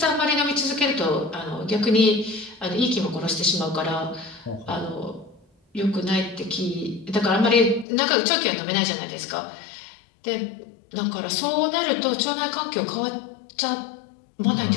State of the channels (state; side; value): drops out; right; at 7.9 s